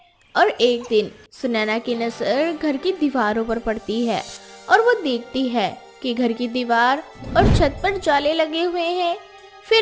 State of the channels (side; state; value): both; identical; correlation 1.00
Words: और एक दिन सुनैना की नजर घर की दीवारों पर पड़ती है और वो देखती है कि घर की दीवार और छत पर जाले लगे हुए हैं।